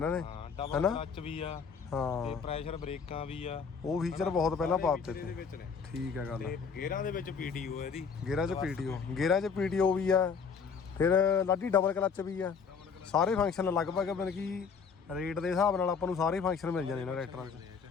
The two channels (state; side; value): quieter; right; 5.9 dB